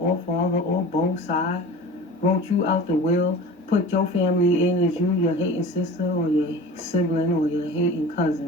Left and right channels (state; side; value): normal; both; correlation 0.37